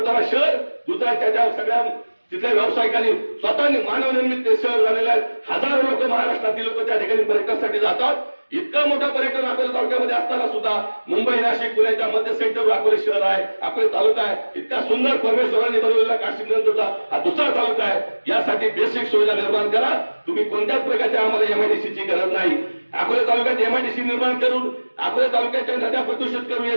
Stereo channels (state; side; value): inverted; both; correlation -1.00